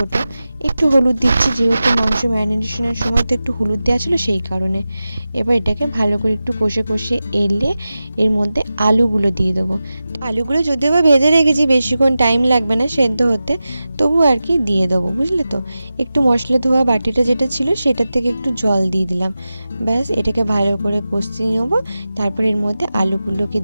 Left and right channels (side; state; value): both; inverted; correlation -0.94